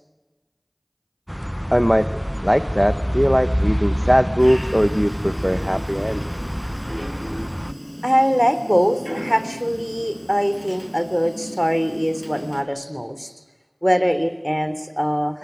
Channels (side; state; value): both; identical; correlation 1.00